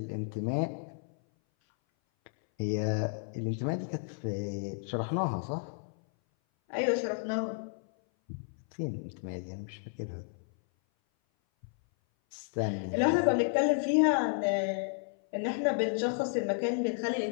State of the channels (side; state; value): right; silent; 56 dB below the other